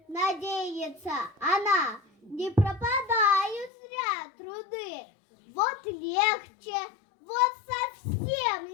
надеется она. Не пропадают зря труды. Вот легче, вот совсем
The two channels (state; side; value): drops out; right; at 3.7 s